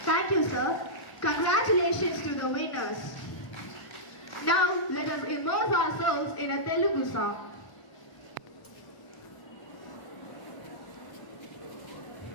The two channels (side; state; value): right; late; 1.0 ms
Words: Thank you, sir. Congratulations to the winners. Now, let us immerse ourselves in a Telugu song.